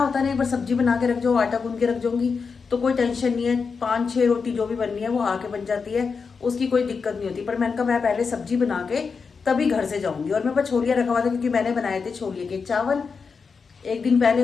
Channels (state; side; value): quieter; right; 5.3 dB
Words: नहीं, एक बार सब्जी बना के रख जाओ, आटा गूंद के रख जाऊंगी तो कोई टेंशन नहीं है। 5-6 रोटी जो भी बननी है वो आके बन जाती है, उसकी कोई दिक्कत नहीं होती। पर मैंने कहा मैं पहले सब्जी बना के तभी घर से जाऊंगी। और मेरे पास छोलिया रखा हुआ था, क्योंकि मैंने बनाए थे छोलिए के चावल एक दिन